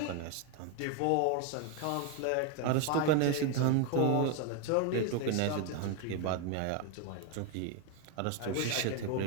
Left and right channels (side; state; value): both; different; correlation 0.01